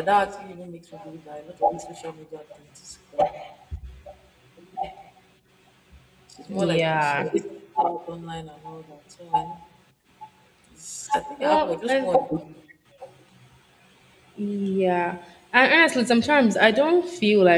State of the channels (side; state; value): both; identical; correlation 1.00